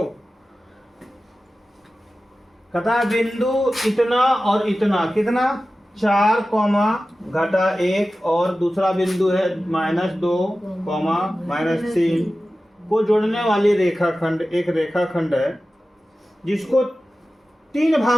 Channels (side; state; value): both; normal; correlation 0.95